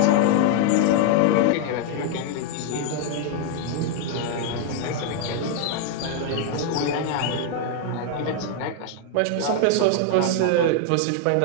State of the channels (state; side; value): different; both; correlation 0.00